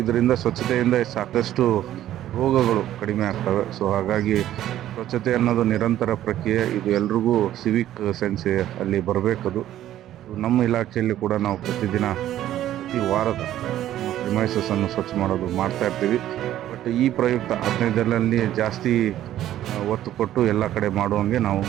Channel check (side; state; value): left; quieter; 12.6 dB